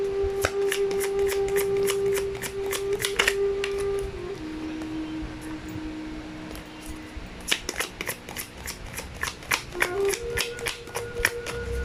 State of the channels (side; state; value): both; identical; correlation 1.00